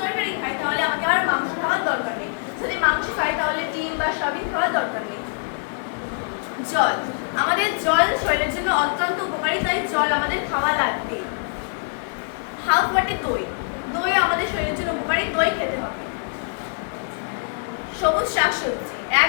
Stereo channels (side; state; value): right; silent; digital silence